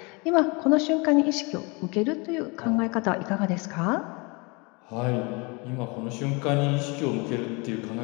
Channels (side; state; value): right; quieter; 28.8 dB